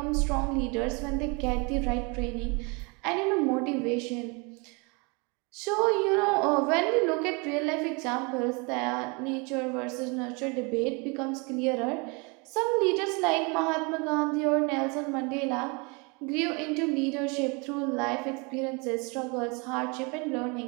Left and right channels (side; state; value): left; quieter; 30.7 dB